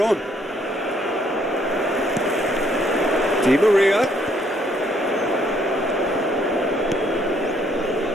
on. Di Maria.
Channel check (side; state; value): both; normal; correlation 0.67